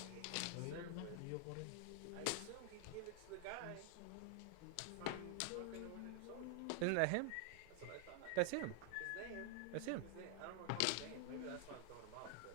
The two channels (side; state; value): both; different; correlation 0.00